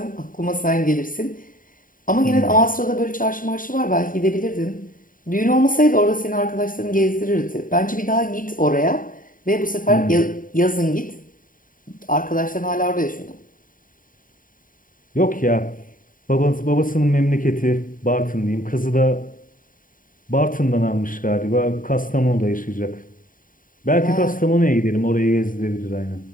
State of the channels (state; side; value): late; right; 0.40 ms